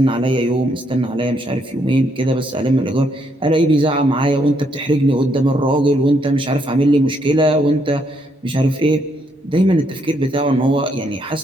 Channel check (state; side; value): normal; both; correlation 0.74